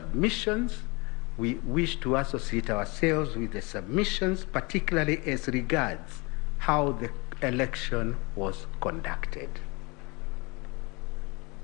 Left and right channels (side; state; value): right; quieter; 27.3 dB